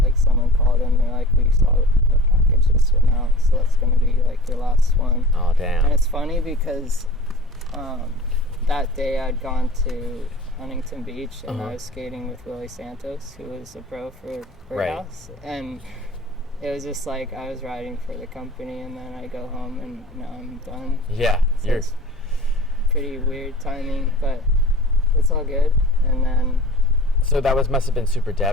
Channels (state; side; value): normal; both; correlation 0.41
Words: called in, they're like, "We saw a package just went out, so that's gonna be like your last one." Oh, damn. And it's funny because that day I'd gone to Huntington Beach, and Uh-huh. I was skating with Willie Santos, who was a pro for Birdhouse, and it was just like I was riding for the company, and then I go home and now I'm done. Yeah, So you're it's pretty weird timing, but it's all good. And then so that must have been super